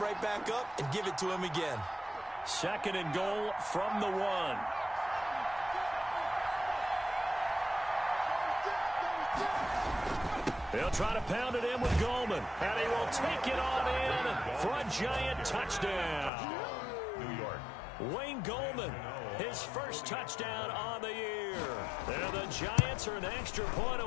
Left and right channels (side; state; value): right; drops out; at 16.3 s